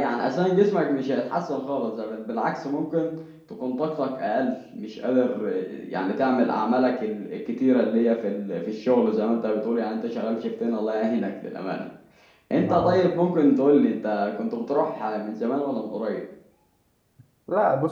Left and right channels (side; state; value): both; identical; correlation 1.00